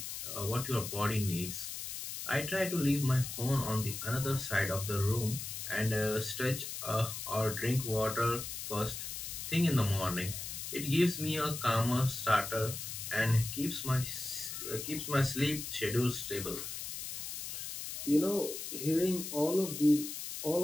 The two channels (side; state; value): left; noise; hiss, 7 dB below the sound